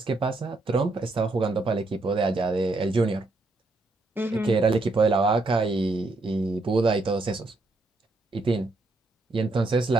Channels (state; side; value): quieter; left; 3.1 dB